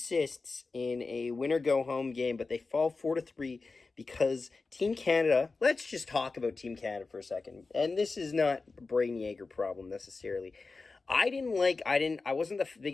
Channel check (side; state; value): right; quieter; 4.0 dB